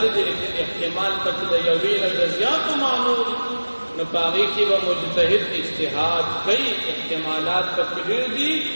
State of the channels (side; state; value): both; inverted; correlation -1.00